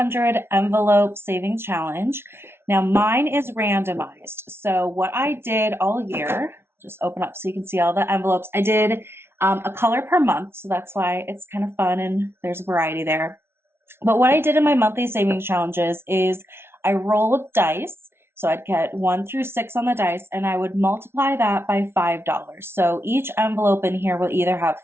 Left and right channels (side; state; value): left; late; 0.12 ms